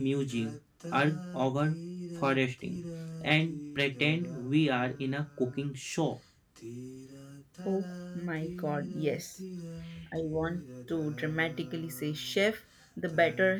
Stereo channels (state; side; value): identical; both; correlation 1.00